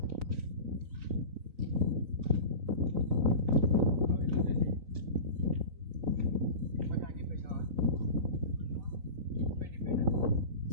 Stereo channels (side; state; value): left; late; 3.9 ms